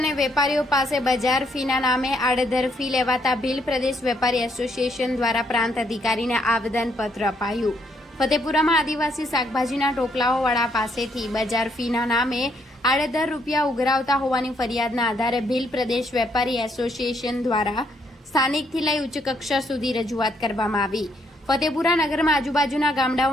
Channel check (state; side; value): normal; both; correlation 0.72